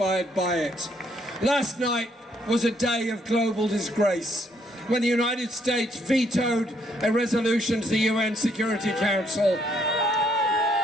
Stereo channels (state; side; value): normal; both; correlation 0.70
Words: by it. Last night was a day of global disgrace when the United States vetoed a resolution to the UN Security Council,